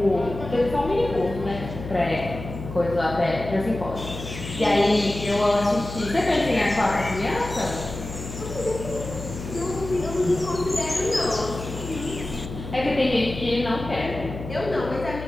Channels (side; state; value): left; noise; hum, 10 dB below the sound